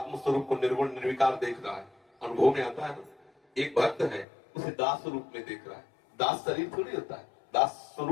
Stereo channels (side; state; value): right; drops out; at 4.2 s